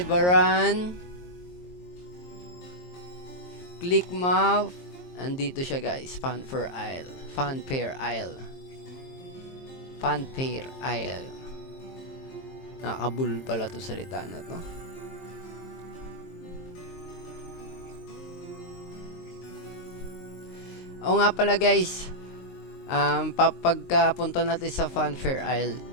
Click map. Andito siya guys, Fanfare Isle. Fanfare Isle. Nakakabul pala to salita na to. O nga pala guys, pagkapunta natin sa Fanfare Isle,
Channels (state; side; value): late; right; 22 ms